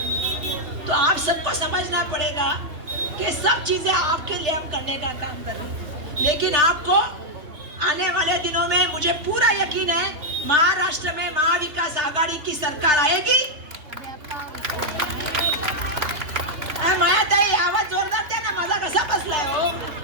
है। तो आप सबको समझना पड़ेगा कि सब चीजें आपके लिए हम करने का काम कर रहे हैं। लेकिन आपको आने वाले दिनों में मुझे पूरा यकीन है, महाराष्ट्र में महाविकास आघाड़ी की सरकार आएगी। मायाताई आवाज जोरदार द्या ना, माझा कसा बसलाय हो?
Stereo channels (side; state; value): left; late; 3.3 ms